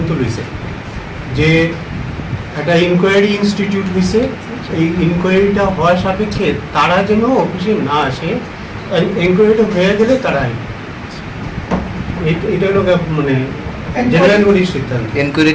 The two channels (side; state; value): both; identical; correlation 1.00